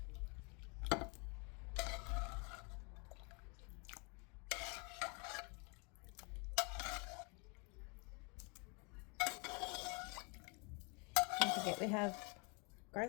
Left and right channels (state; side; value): quieter; right; 33.1 dB